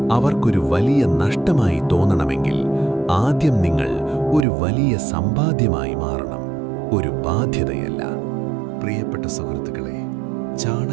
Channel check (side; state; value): left; drops out; at 4.5 s